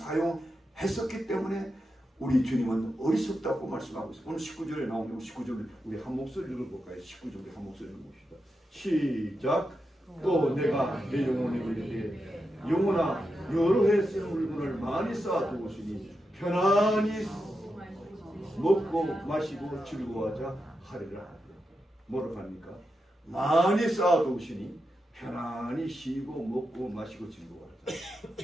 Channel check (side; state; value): both; normal; correlation 0.88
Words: 때문에 우리 주님은 어리석다고 말씀하고 있어요. 오늘 19절에 나오는 19절을 우리 한 목소리로 읽어볼까요? 19절에 한 목소리로 봅시다. 시작. 또 내가 내 영혼이 그리되 영혼아 여러 해 쓰는 물건을 많이 쌓아두었으니 편안히 먹고 마시고 즐거워하자 하리라. 뭐라고 합니까? 많이 쌓아두었으니 편안히 쉬고 먹고 마시고 즐거워하자.